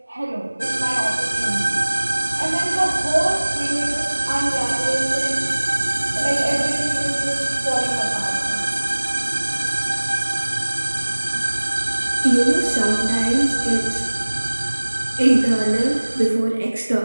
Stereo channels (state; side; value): inverted; both; correlation -1.00